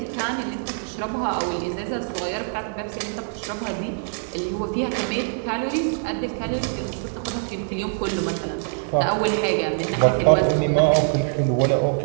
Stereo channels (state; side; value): silent; left; digital silence